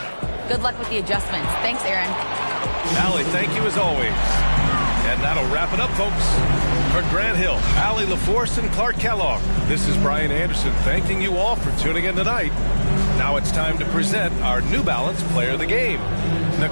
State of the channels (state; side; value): inverted; both; correlation -1.00